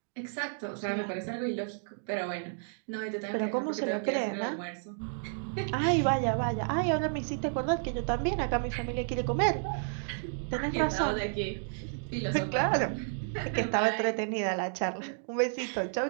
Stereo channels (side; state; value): left; silent; digital silence